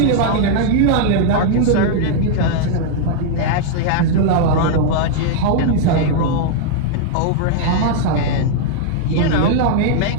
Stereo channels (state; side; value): different; both; correlation -0.01